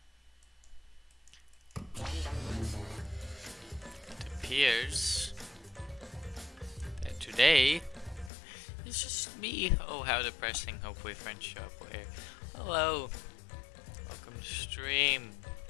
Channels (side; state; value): right; drops out; at 8.3 s